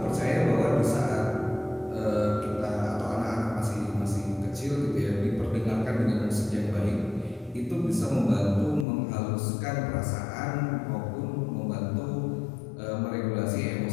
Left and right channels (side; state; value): right; drops out; at 8.8 s